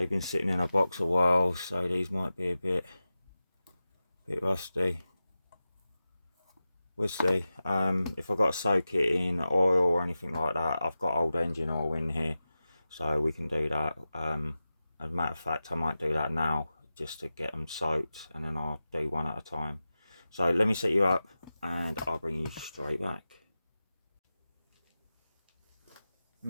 been sitting in a box a while, so these might be a bit rusty. We'll see. If I've got to soak it in oil or anything like that, I've got old engine oil in here, so we can do that. As a matter of fact, I might do that now just to get them soaked, and then I'll do one at a time. So let me set you up and I'll bring you straight back.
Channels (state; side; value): inverted; both; correlation -0.94